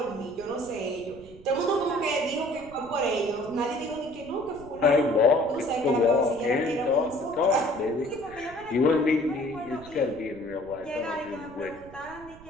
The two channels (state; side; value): noise; right; rumble, 20 dB below the sound